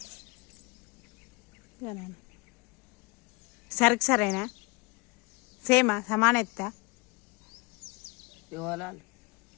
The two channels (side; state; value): right; quieter; 27.1 dB